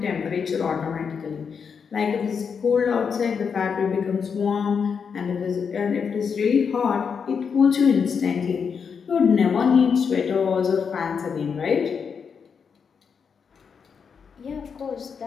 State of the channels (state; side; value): quieter; right; 6.3 dB